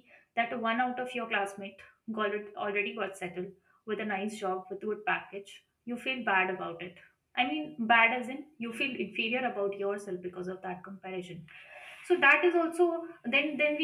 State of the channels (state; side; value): identical; both; correlation 1.00